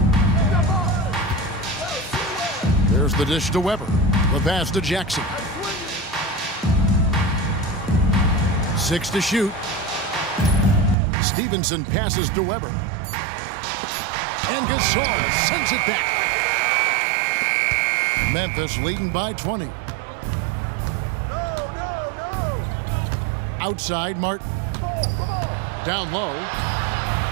There's the dish to Weber. The pass to Jackson. 6 to shoot. Stevenson passes to Weber. And Gasol sends it back. Memphis leading by 20. Outside, Martin. Down low.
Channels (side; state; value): left; drops out; at 11.0 s